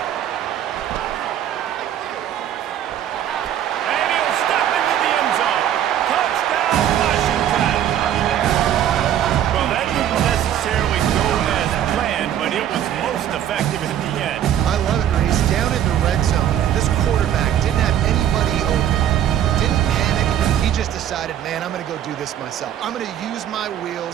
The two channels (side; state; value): left; quieter; 10.6 dB